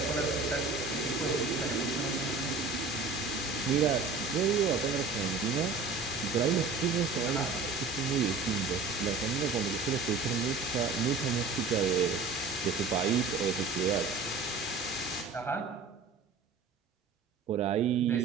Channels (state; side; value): quieter; left; 4.2 dB